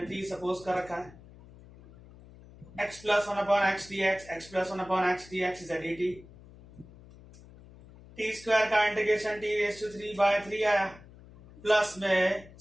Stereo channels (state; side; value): noise; left; hum, 21 dB below the sound